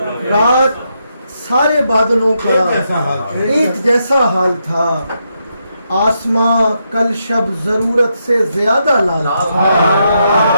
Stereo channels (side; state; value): both; inverted; correlation -0.81